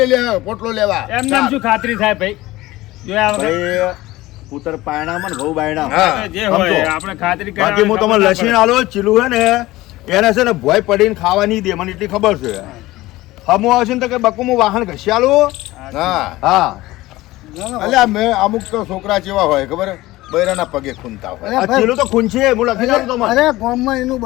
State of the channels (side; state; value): right; quieter; 18.1 dB